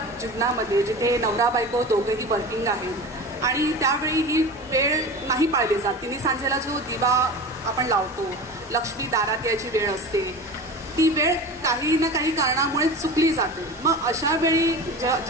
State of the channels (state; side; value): normal; both; correlation 0.32